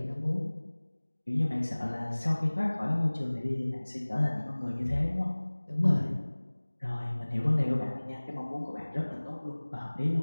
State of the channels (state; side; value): inverted; both; correlation -1.00